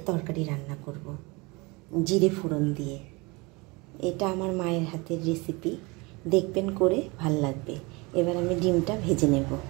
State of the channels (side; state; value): left; quieter; 26.1 dB